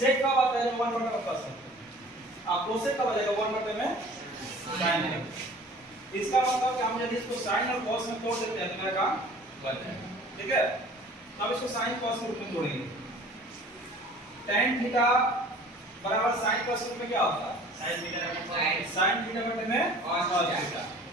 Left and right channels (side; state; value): both; normal; correlation 0.48